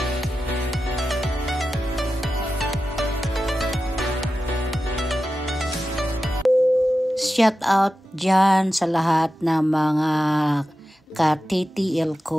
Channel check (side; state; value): both; normal; correlation 0.92